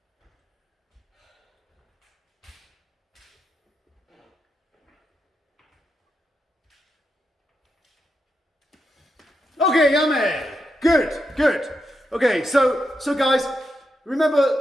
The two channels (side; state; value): both; normal; correlation 0.84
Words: Okay, yummy. Good, good. Okay, so guys,